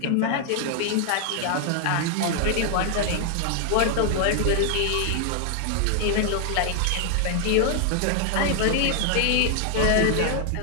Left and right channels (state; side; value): different; both; correlation 0.00